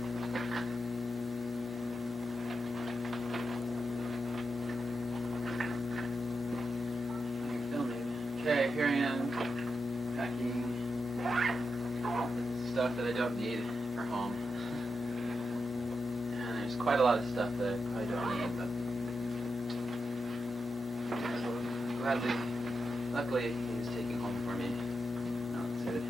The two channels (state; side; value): normal; both; correlation 0.87